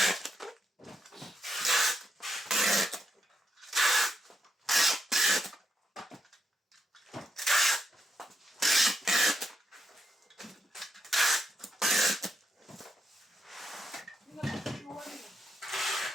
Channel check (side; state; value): both; normal; correlation 0.82